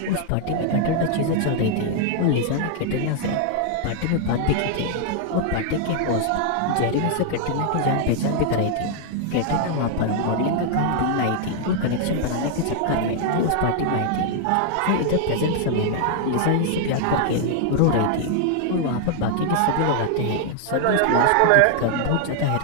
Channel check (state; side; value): different; both; correlation 0.00